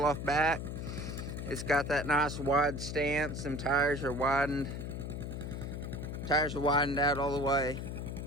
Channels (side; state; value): left; noise; hum, 5 dB below the sound